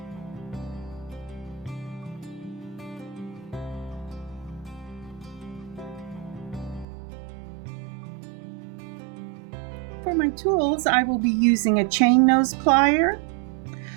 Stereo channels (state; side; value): drops out; left; at 6.9 s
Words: For my tools, I will be using a chain nose plier,